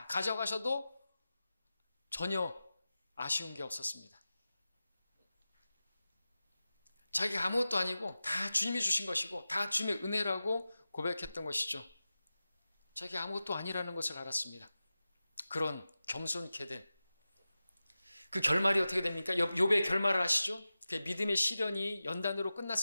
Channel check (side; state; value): both; inverted; correlation -0.94